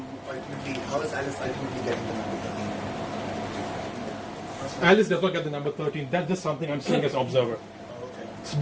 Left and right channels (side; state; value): both; identical; correlation 1.00